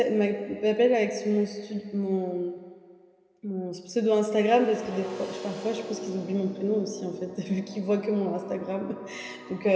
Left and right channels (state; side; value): identical; both; correlation 1.00